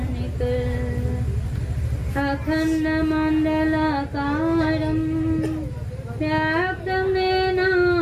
अखंड मंडलाकारं व्याप्तं येन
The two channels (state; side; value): identical; both; correlation 1.00